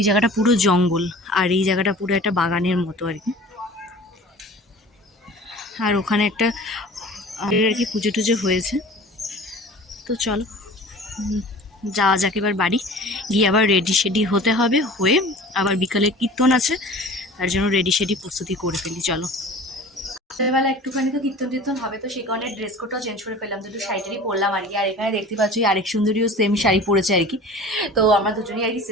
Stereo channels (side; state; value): both; normal; correlation 0.42